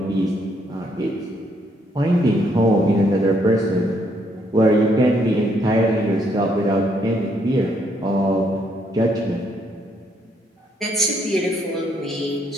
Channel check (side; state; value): both; normal; correlation 0.72